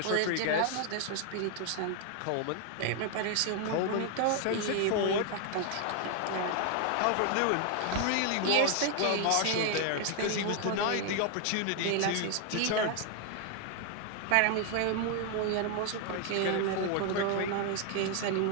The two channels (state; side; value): different; both; correlation 0.00